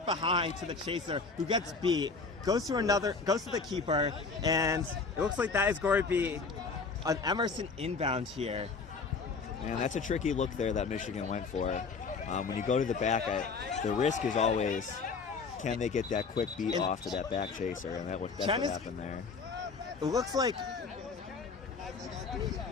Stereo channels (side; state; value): right; quieter; 4.7 dB